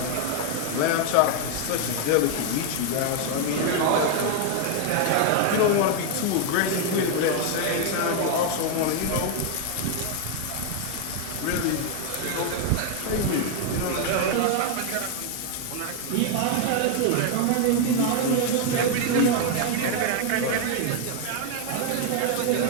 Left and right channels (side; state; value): both; different; correlation 0.00